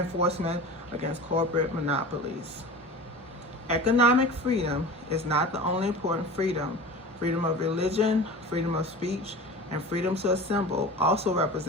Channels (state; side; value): normal; both; correlation 0.35